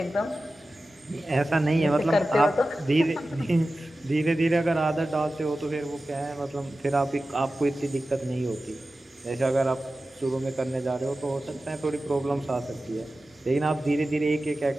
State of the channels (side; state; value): both; normal; correlation 0.95